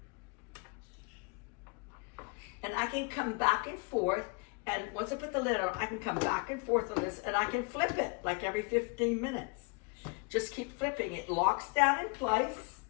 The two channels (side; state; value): right; quieter; 32.7 dB